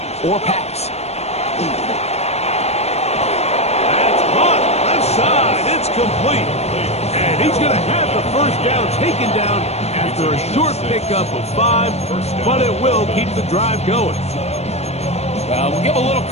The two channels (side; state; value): right; late; 0.31 ms